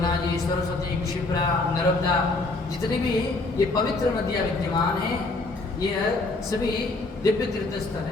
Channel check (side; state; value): right; quieter; 3.2 dB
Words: जी, सरस्वती, क्षिप्रा, नर्मदा, जितनी भी ये पवित्र नदियां विद्यमान हैं, ये सभी दिव्य तीर्थ स्थल